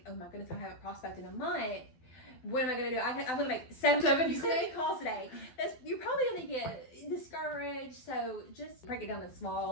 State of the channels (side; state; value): right; late; 12 ms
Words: oh my goodness, I haven't prospected in a month. What am I going to do? I'm going to make 70 calls today. You're probably going to get discouraged. So just break it down in